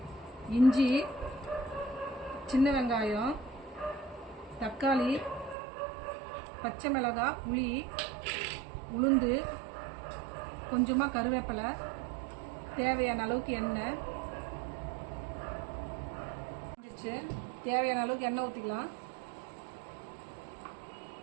இஞ்சி, சின்ன வெங்காயம், தக்காளி, பச்சை மிளகாய், புளி, உளுந்து, கொஞ்சமாக கருவேப்பிலை, தேவையான அளவுக்கு எண்ணெய். தேவையான அளவுக்கு எண்ணெய் ஊற்றிக்கலாம்.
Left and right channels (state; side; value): drops out; left; at 5.6 s